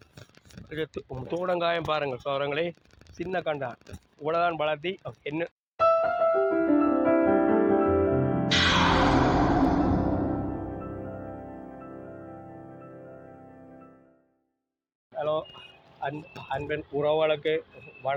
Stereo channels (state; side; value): identical; both; correlation 1.00